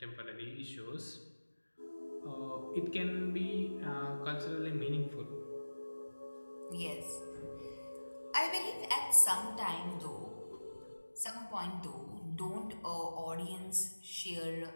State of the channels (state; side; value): inverted; both; correlation -1.00